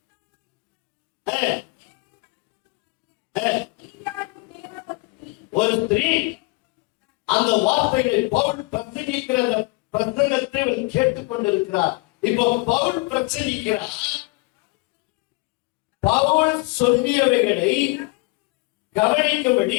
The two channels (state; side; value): quieter; right; 26.3 dB